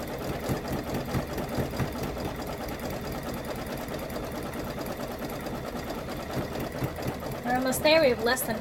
We're almost there. We have less than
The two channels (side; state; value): both; identical; correlation 1.00